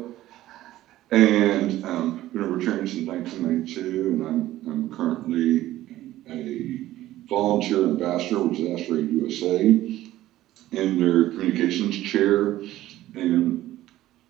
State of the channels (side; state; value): left; quieter; 14.9 dB